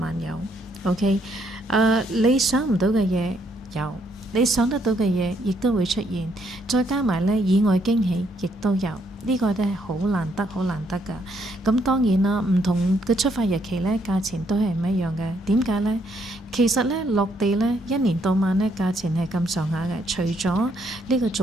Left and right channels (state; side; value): normal; both; correlation 0.72